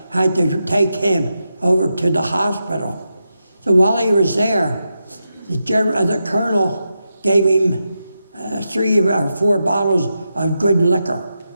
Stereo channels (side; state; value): both; inverted; correlation -0.88